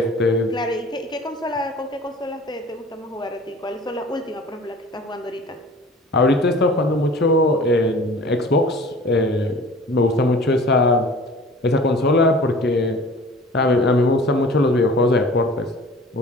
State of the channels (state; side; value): normal; both; correlation 0.44